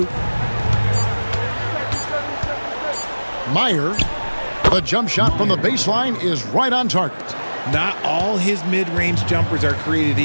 Meyer. The jump shot from the baseline is right on target. Not all his mid-range jumpers are created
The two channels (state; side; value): inverted; both; correlation -1.00